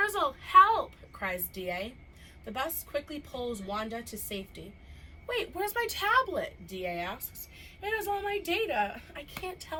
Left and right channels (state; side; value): identical; both; correlation 1.00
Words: help, cries DA. The bus quickly pulls Wanda to safety. Wait, where's my tablet? DA asks. It has all my data. I can't